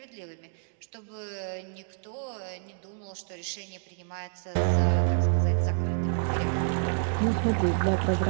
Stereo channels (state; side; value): silent; left; 59 dB below the other